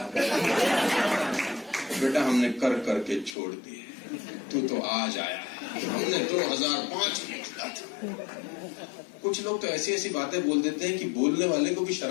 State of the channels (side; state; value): right; drops out; at 3.4 s